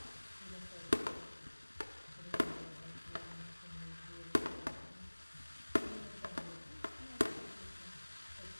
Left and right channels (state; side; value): inverted; both; correlation -1.00